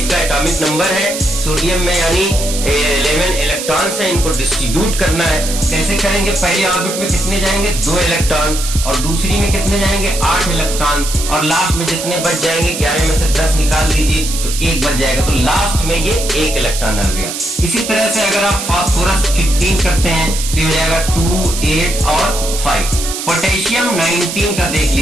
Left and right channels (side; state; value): right; noise; hiss, 6 dB below the sound